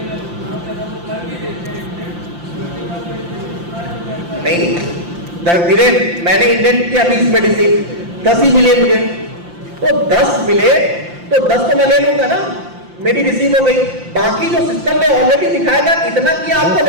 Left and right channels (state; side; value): late; left; 5.8 ms